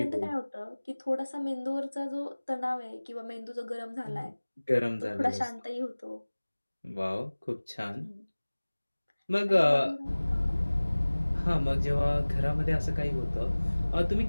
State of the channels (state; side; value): inverted; both; correlation -1.00